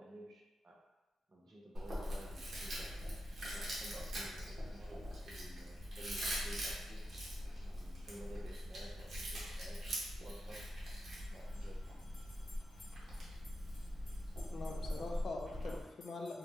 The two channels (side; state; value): both; normal; correlation 0.89